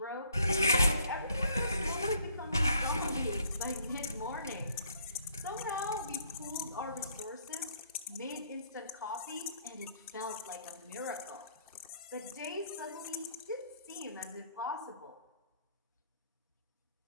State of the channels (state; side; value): inverted; both; correlation -0.64